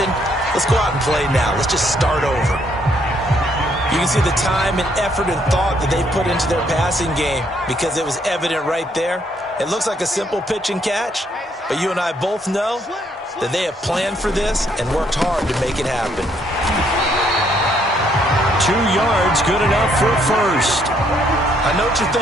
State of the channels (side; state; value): both; normal; correlation 0.70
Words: Let's go out and play now. Let's just start over. You can see the time and effort and thought that they put into their passing game because it was evident right there. It looks like a simple pitch and catch, but you and I both know that they have planned for this and worked hard to make it happen. 2 yards, good enough for a first. I know what you're